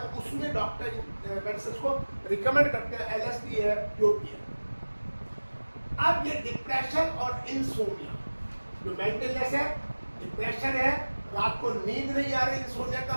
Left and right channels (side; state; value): both; inverted; correlation -1.00